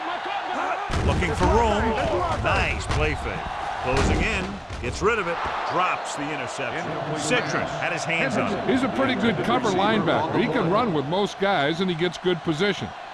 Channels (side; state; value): both; identical; correlation 1.00